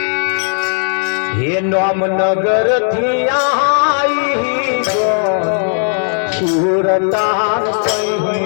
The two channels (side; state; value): right; silent; 59 dB below the other